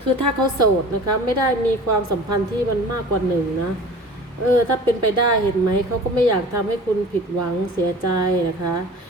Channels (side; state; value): both; normal; correlation 0.41